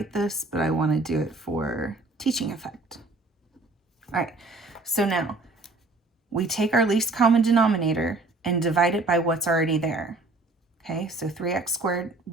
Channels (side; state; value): left; quieter; 3.2 dB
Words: this, but I want to do it for teaching effect. All right, so now we take our least common denominator and divide it by what's already there. Okay, so 3x squared